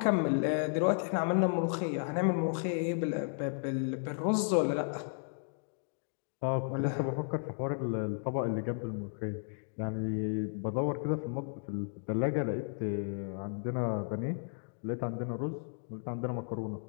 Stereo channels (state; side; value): silent; right; digital silence